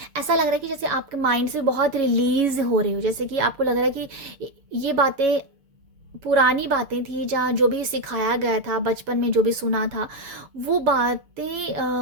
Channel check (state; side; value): late; left; 6.7 ms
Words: ऐसा लग रहा है कि जैसे आपके माइंड से बहुत रिलीज हो रहे हो, जैसे कि आपको लग रहा है कि ये बातें पुरानी बातें थी, जहाँ जो भी सिखाया गया था बचपन में, जो भी सुना था, वो